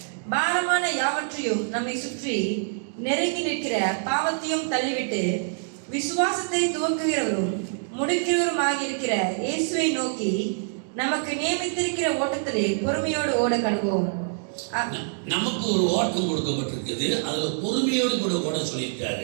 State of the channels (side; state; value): left; silent; digital silence